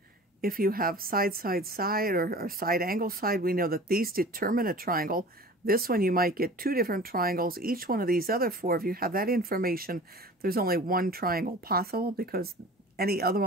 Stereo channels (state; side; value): normal; both; correlation 0.41